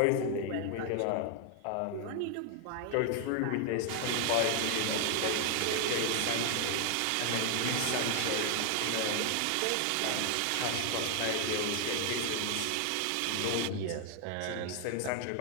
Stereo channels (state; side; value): different; both; correlation 0.00